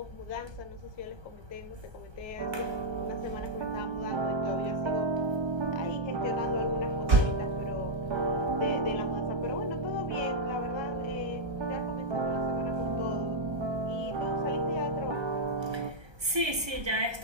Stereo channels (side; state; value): left; late; 1.3 ms